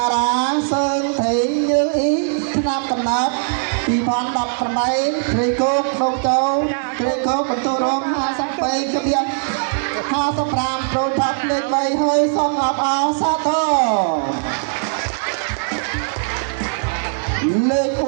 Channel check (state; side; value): silent; left; digital silence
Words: ារាសើថៃញើអ៊ីឆ្នាំកំណត់2018ព្រៃគោកដងទៅព្រៃគោកបន្ទូរង52គ្រា55ប្រូបាក់លេខ3ហើយសូមអបអរសាទរលេខ